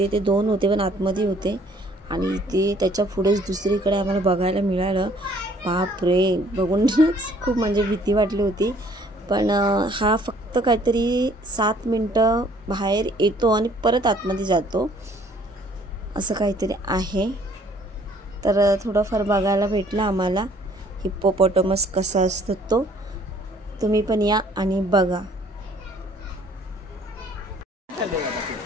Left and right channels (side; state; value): both; normal; correlation 0.59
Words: ते 2 होते पण आतमध्ये होते, आणि इथे त्याच्या पुढेच दुसरीकडे आम्हाला बघायला मिळालं। बापरे, बघूनच खूप म्हणजे भीती वाटली होती, पण हा फक्त काहीतरी 7 मिनटं बाहेर येतो आणि परत आतमध्ये जातो, असं काहीतरी आहे। तर थोडंफार बघायला भेटलं आम्हाला हिप्पोपॉटमस कसा असतो तो, तुम्ही पण या आणि बघा।